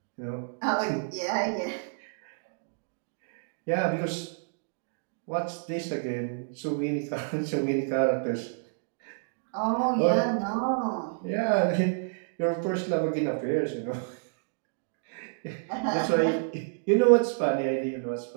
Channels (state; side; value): silent; left; digital silence